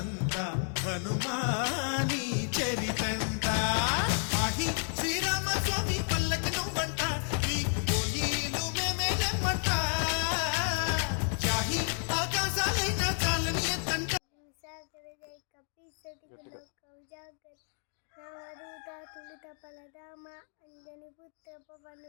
హనుమాని చరితంట ఆహి శ్రీరామ స్వామి పల్లకి నువ్వంట నీకు పోయిలు మేమేలమ్మంట జాహి ఆకాశాలైనా చాలని ఎత్తంట व्याघ्र रामदूत तुलित फलधाम अंजनी पुत्र पवन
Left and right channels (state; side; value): silent; right; 56 dB below the other